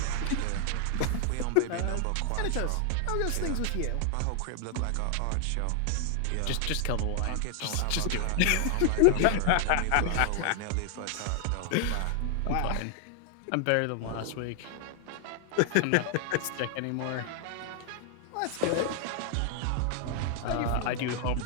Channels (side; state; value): both; different; correlation 0.00